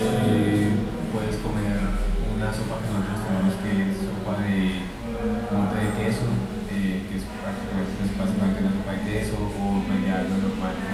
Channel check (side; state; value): both; identical; correlation 1.00